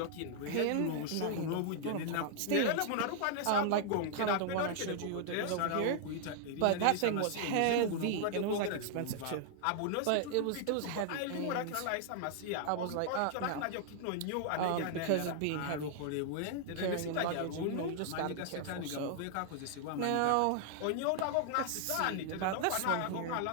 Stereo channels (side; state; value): both; different; correlation 0.00